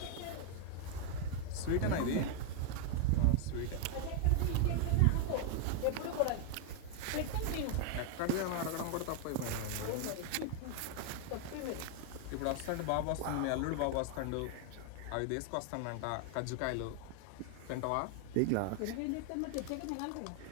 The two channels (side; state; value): both; different; correlation 0.00